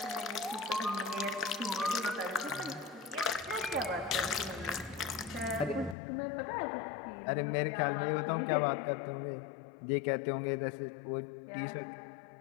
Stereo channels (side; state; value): right; drops out; at 6.0 s